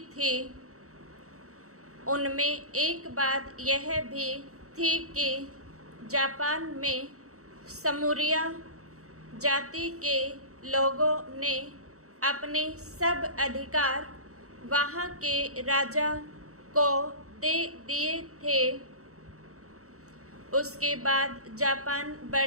थी। उनमें एक बात यह भी थी कि जापान में समूरिया जाति के लोगों ने अपने सब अधिकार वहाँ के राजा को दे दिए थे। उसके बाद जापान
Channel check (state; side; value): late; left; 0.65 ms